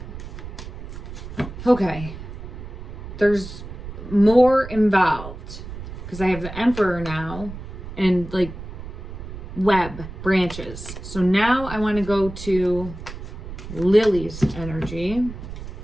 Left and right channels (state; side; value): noise; right; rumble, 11 dB below the sound